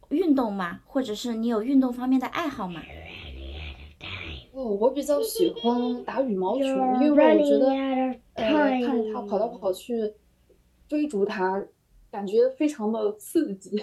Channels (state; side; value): identical; both; correlation 1.00